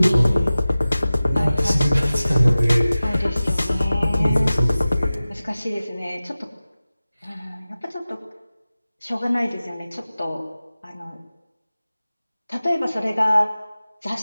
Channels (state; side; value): inverted; both; correlation -0.97